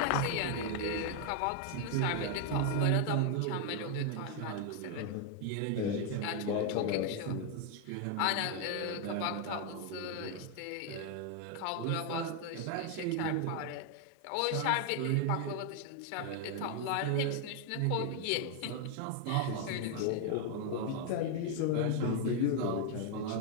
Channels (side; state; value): both; different; correlation 0.00